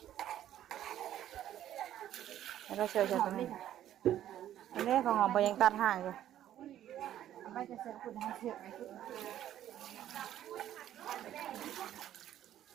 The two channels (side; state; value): left; quieter; 11.8 dB